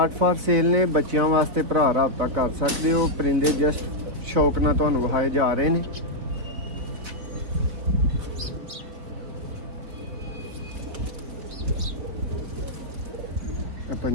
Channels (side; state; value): left; late; 3.9 ms